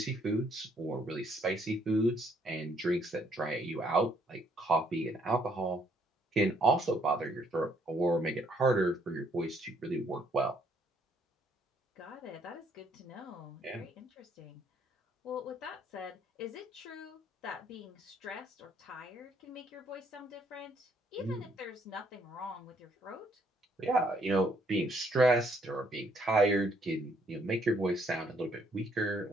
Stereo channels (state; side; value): normal; both; correlation 0.68